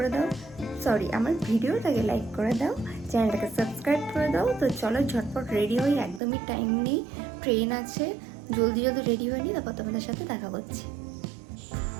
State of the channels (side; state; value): left; drops out; at 6.2 s